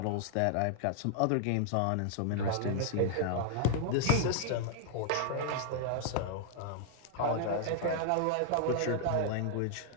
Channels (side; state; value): both; different; correlation -0.01